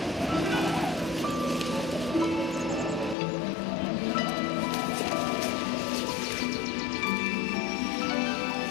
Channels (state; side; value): drops out; right; at 3.2 s